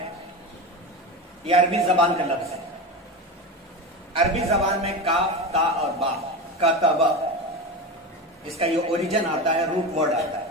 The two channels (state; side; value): normal; both; correlation 0.23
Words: یہ عربی زبان کا لفظ ہے۔ عربی زبان میں کاف، تا اور با، کتبہ، اس کا یہ اوریجن آتا ہے، روٹ ورڈ آتا ہے۔